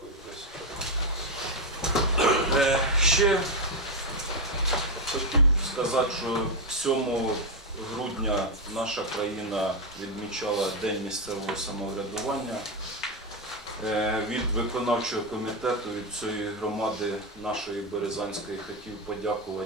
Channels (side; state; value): both; normal; correlation 0.05